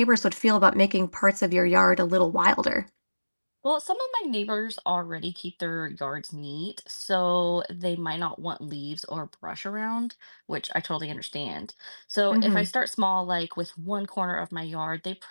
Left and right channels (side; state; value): both; inverted; correlation -1.00